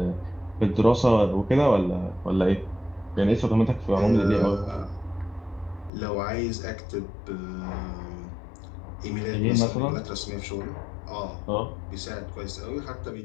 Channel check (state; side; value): drops out; right; at 5.9 s